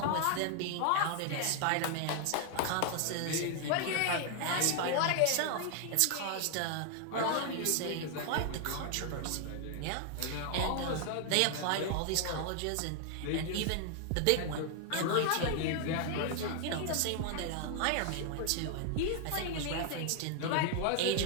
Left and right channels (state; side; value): different; both; correlation 0.00